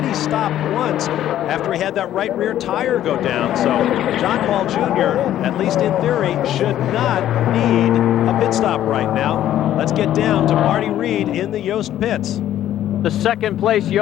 stopped once after he had that right rear tire go down. So John Paul Jr., at least in theory, should not need a pit stop right now. Let's get down to Marty Reed in the Yost pits. The second place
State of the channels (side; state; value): right; quieter; 12.1 dB